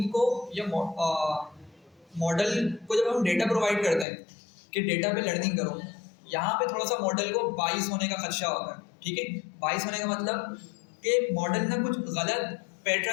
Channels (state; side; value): drops out; right; at 4.0 s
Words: को या मॉडल को जब हम डेटा प्रोवाइड करते हैं कि डेटा पे लर्निंग करो, यहाँ पे थोड़ा सा मॉडल को बाइस होने का खदशा होता है, ठीक है। बाइस होने का मतलब कि मॉडल ना कुछ गलत